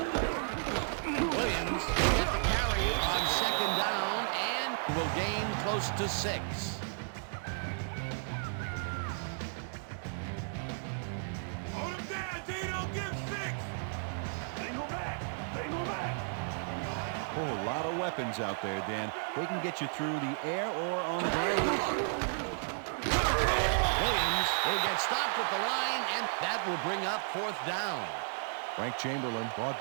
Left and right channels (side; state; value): left; silent; digital silence